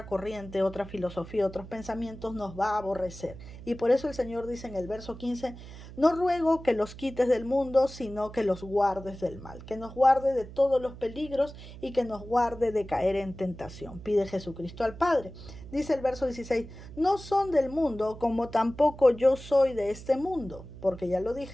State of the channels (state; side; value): noise; right; hum, 15 dB below the sound